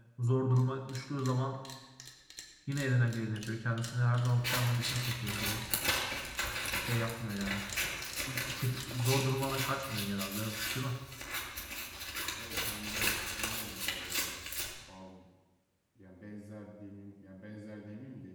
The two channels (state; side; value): identical; both; correlation 1.00